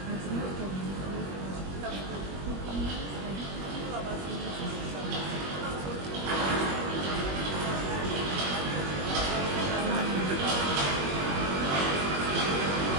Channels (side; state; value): left; late; 21 ms